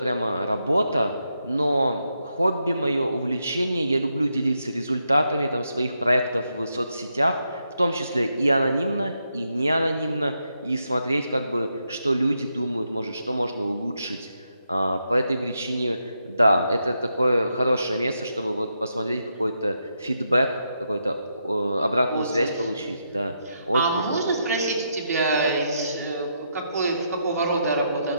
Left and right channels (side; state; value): both; inverted; correlation -0.81